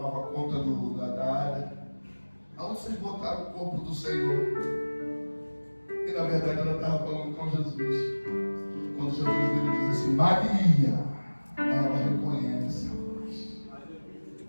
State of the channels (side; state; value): both; inverted; correlation -1.00